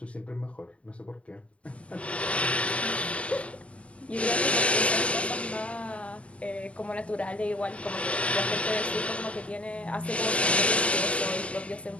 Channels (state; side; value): late; right; 0.063 ms